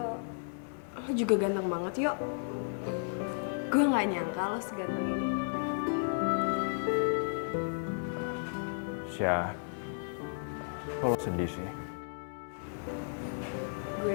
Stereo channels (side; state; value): right; silent; 55 dB below the other